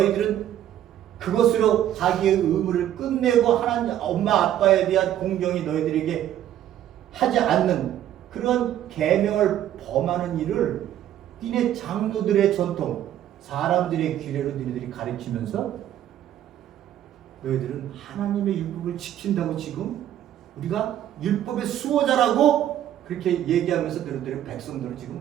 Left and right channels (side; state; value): left; quieter; 11.6 dB